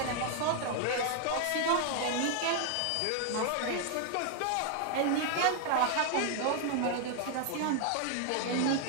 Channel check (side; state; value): both; different; correlation 0.00